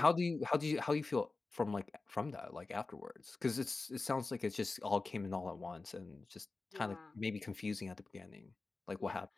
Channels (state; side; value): quieter; right; 3.7 dB